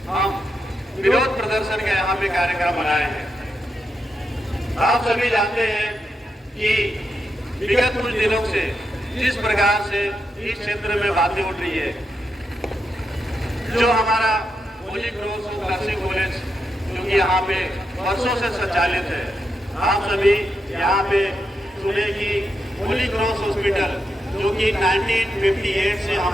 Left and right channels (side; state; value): both; normal; correlation 0.84